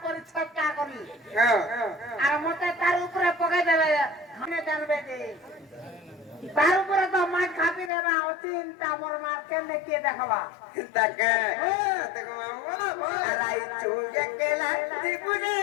করে ছক্কা করি হ্যাঁ আর মতে তার উপরে পকাই দেবে মনে জানবে যে তার উপরে তো মাছ খাপি দেবে অচিন্তা মোর মাছ কেমনে কে দেখাবা তাকে দেখো আর আই চুগে কেলা জীবনে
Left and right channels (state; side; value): drops out; right; at 7.9 s